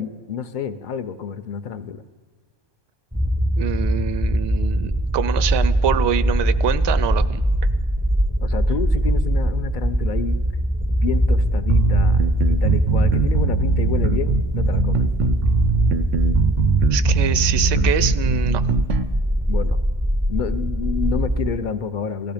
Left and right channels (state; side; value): late; left; 1.2 ms